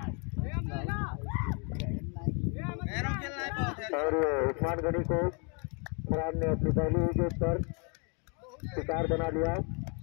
और उस्मान गनी को फरहान ने अपनी पहली विकेट पर शिकार बना लिया।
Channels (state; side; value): quieter; right; 35.8 dB